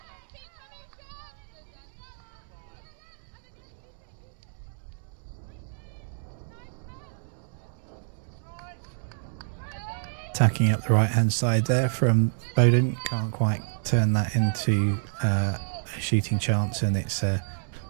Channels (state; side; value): silent; left; digital silence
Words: Attacking up the right hand side there from Bowdon. Can't quite turn that into a shooting chance, and it's a